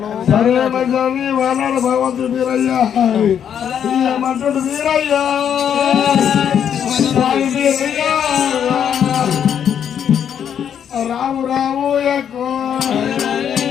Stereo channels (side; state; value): right; quieter; 8.7 dB